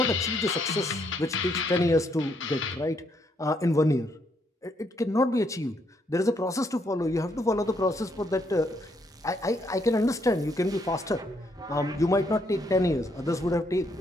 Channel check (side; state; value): both; normal; correlation 0.73